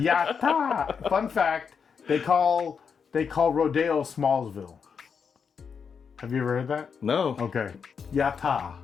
Fun fact: they call Rodeo Smallsville. Have you ever heard that? No. Okay. Yatta.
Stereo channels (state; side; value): quieter; right; 6.3 dB